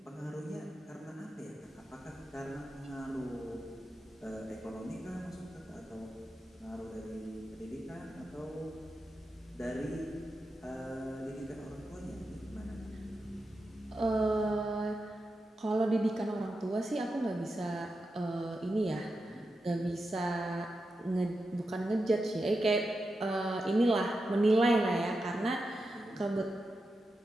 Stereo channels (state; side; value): normal; both; correlation 0.89